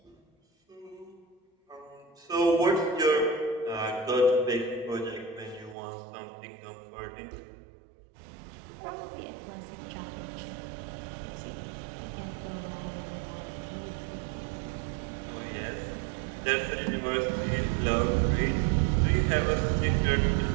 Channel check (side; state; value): left; drops out; at 5.8 s